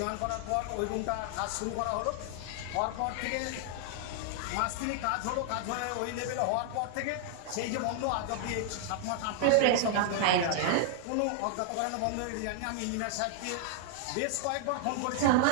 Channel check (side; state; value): both; different; correlation 0.00